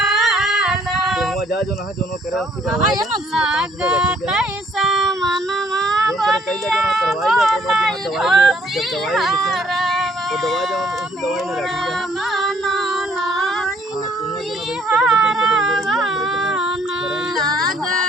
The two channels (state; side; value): normal; both; correlation 0.63